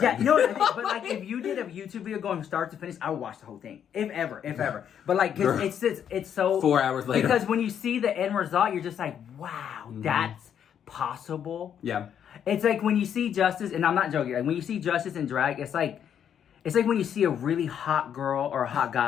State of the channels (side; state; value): right; quieter; 8.9 dB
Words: Yeah, you know what I mean? But like if you did a YouTube video going from start to finish, I would watch the whole thing. If ever. But like it's so 4 hours later. Because when you see the end result, you're just like, wow, that's possible. Yeah. It's like when you see Justice, and I'm not joking. Like when you see Justice in drag, it's like when you see a really hot girl or a hot